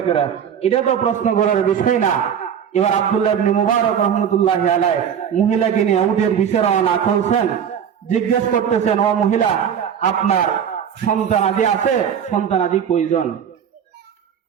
করে, এটা তো প্রশ্ন করার বিষয় না। এবার আব্দুল্লাহ ইবনে মুবারক রহমতুল্লাহি আলাইহি মহিলাকে নিয়ে উটের বিষয় রওনা করছেন। জিজ্ঞেস করতেছেন, ও মহিলা, আপনার সন্তানাদি আছে? সন্তানাদি কয়জন?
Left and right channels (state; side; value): quieter; left; 8.2 dB